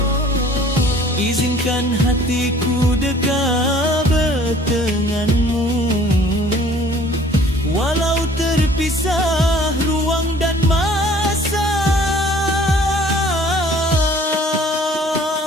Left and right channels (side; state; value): both; normal; correlation 0.53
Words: Izinkan hatiku dekat berdenganmu, walau terpisah ruang dan masa.